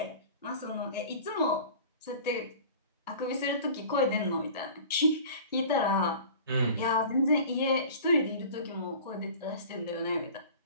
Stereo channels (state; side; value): inverted; both; correlation -0.41